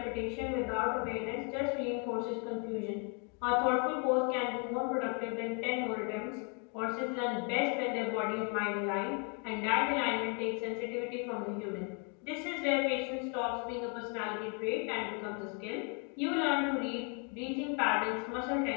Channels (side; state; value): right; quieter; 37.5 dB